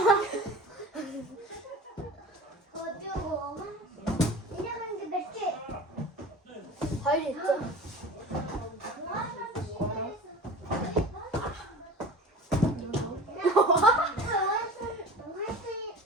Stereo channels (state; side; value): normal; both; correlation 0.37